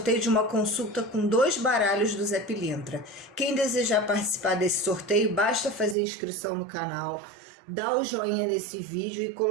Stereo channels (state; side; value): drops out; left; at 6.0 s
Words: de uma consulta com 2 baralhos do Zé Pilintra. Quem desejar participar desse sorteio, basta fazer inscrição no canal, dar o joinha nesse vídeo e